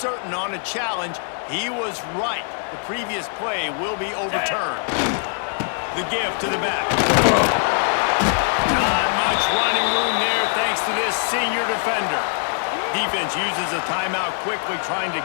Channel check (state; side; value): silent; right; 64 dB below the other